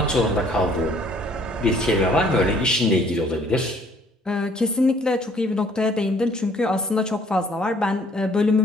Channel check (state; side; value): normal; both; correlation 0.60